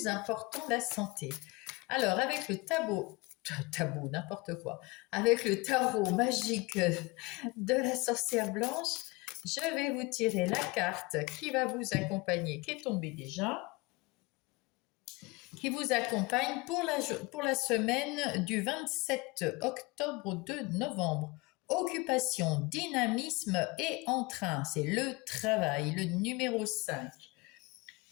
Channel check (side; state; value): right; quieter; 24.9 dB